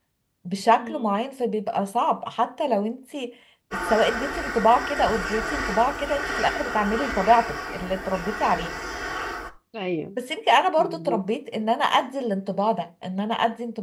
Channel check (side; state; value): both; identical; correlation 1.00